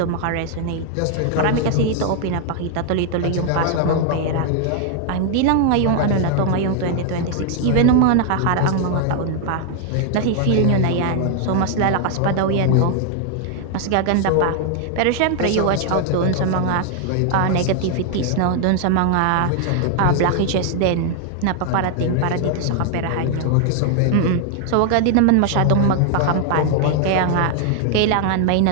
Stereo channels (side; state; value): both; different; correlation 0.00